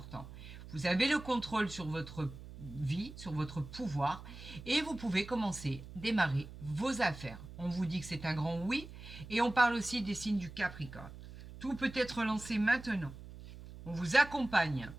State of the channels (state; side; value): noise; right; hum, 14 dB below the sound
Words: Vous avez le contrôle sur votre vie, sur votre pouvoir, et vous pouvez commencer, démarrer vos affaires. On vous dit que c'est un grand oui, et on parle aussi des signes du Capricorne. Tout peut être lancé maintenant. On vous accompagne.